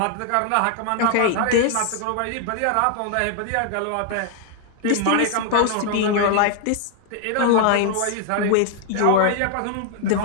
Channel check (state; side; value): different; both; correlation 0.00